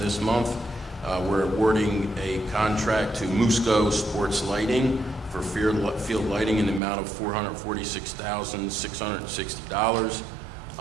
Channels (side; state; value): left; drops out; at 6.8 s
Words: this month. We're awarding a contract to Musco Sports Lighting for field lighting in the amount of $446,660.